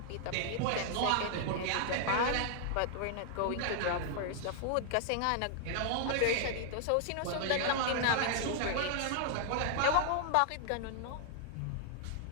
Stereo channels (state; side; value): different; both; correlation -0.01